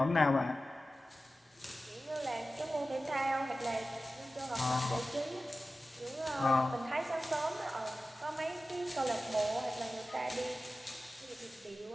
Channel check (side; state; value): both; normal; correlation 0.95